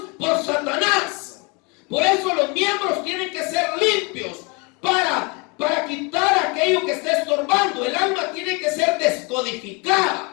por Satanás. Por eso los miembros tienen que ser limpios para quitar aquello que está estorbando. El alma tiene que ser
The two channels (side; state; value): right; quieter; 30.3 dB